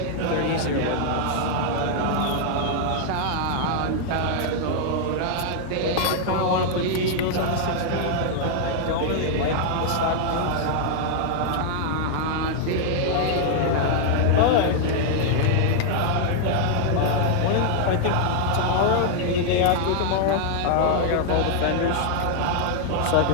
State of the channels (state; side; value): different; both; correlation 0.00